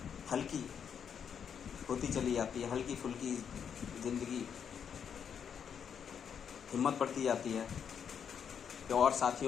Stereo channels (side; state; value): right; quieter; 7.6 dB